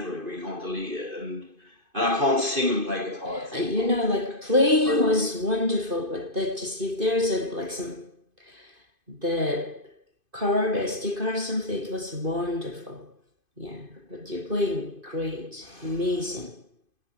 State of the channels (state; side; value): late; left; 2.5 ms